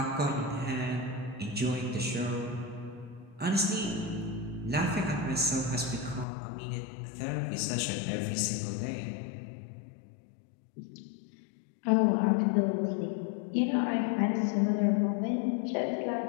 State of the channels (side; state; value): right; drops out; at 6.2 s